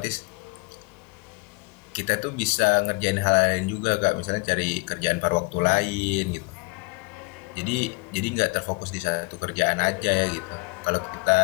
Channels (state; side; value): quieter; right; 28.5 dB